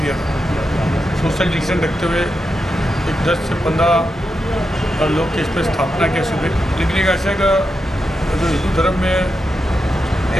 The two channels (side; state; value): both; normal; correlation 0.87